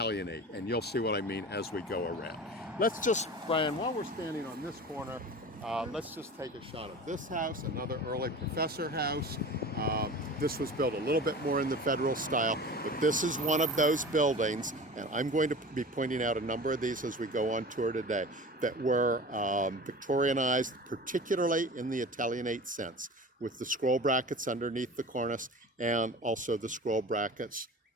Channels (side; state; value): both; normal; correlation 0.36